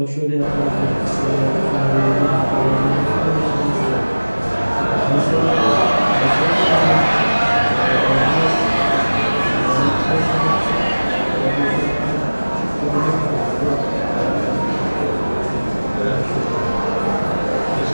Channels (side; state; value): both; inverted; correlation -1.00